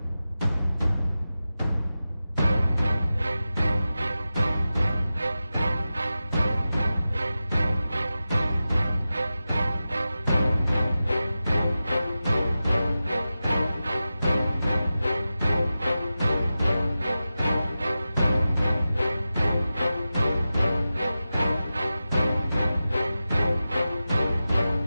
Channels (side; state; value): both; inverted; correlation -0.94